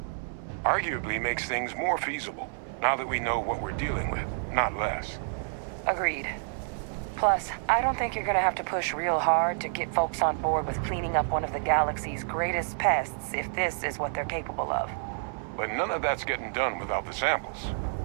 Arguably makes things more feasible, now that we know what we're dealing with, not less. Agreed. Plus, I don't think you're gonna have to push real hard to get folks on board with cleaning up one of the galaxy's greatest pests if this is what they're capable of. But none of that's getting done without the samples.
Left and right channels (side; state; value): left; silent; 59 dB below the other